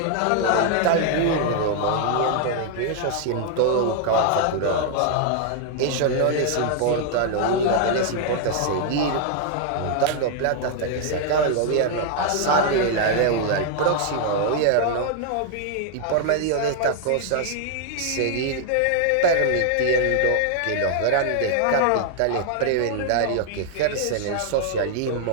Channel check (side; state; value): both; different; correlation 0.00